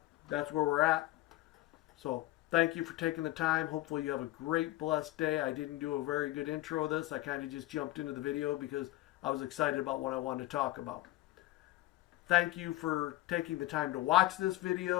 that's where we're at. So thank you for taking the time. Hopefully you have a great, blessed day. I didn't do a very good intro of this. I kind of just jumped into the video because I was excited about what I wanted to talk about. Thank you for taking the time to watch this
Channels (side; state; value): right; quieter; 17.2 dB